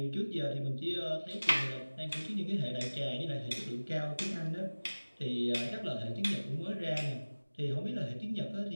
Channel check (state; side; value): inverted; both; correlation -1.00